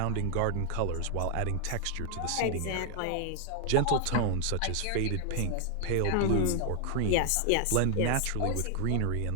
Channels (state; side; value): different; both; correlation 0.00